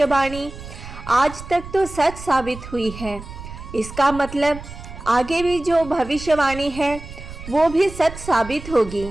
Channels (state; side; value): noise; right; rumble, 13 dB below the sound